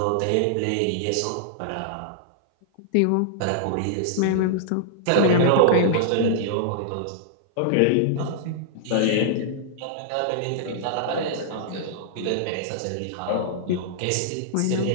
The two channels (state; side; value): different; both; correlation -0.01